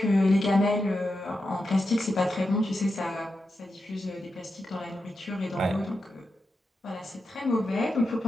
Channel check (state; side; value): normal; both; correlation 0.88